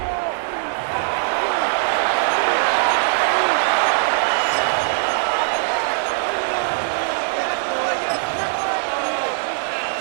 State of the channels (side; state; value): left; silent; digital silence